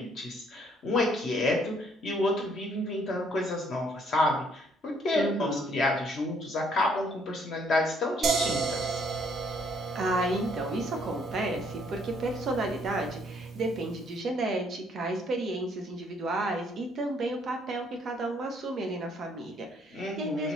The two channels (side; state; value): both; normal; correlation 0.66